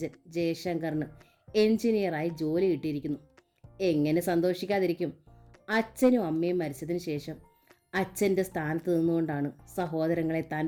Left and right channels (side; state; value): both; identical; correlation 1.00